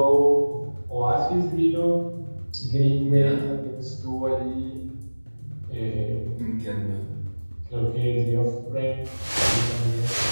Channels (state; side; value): inverted; both; correlation -1.00